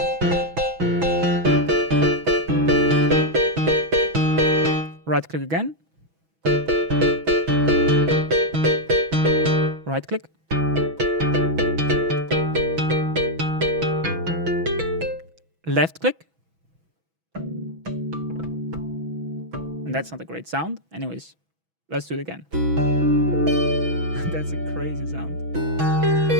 Right click again. Right click. Left click. And that's not a great sound. Anyways, let's do it again. That's a crazy sound.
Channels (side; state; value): left; late; 6.1 ms